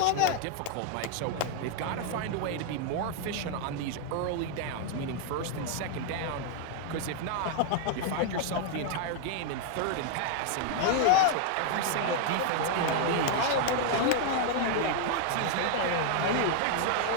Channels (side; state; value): both; different; correlation 0.00